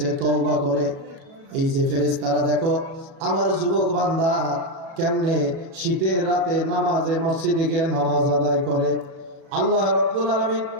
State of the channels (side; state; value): left; late; 37 ms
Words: তওবা করে। এই যে ফেরেশতারা দেখো আমার যুবক বান্দা কেমনে শীতের রাতে নামাজে মসজিদে গিয়ে নামাজ আদায় করে। আল্লাহ রাব্বুল আলামিন